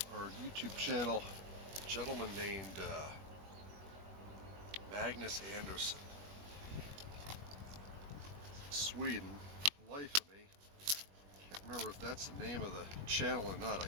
channel gentleman named Magnus Anderson, Sweden. Life of me, can't remember if that's the name of the channel or not. I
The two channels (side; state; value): left; late; 21 ms